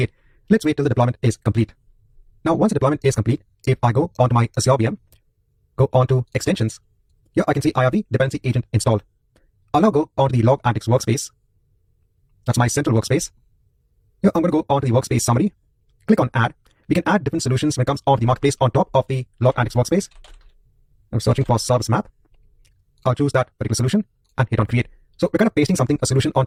Let's wait till the deployment is complete. Now, once the deployment is complete, if I go onto my Azure VM, go onto extensions, here I can see I have the dependency agent installed. I'll now go onto the log_ANDEX workspace. That's my central workspace. Here I'm going to go onto the workspace summary. Click on add. We can add different solutions when it comes onto the marketplace on top of the log_ANDEX workspace. I'm searching for service map. I'll choose that particular solution and hit on create. So we're kind of pasting a solution on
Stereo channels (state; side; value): identical; both; correlation 1.00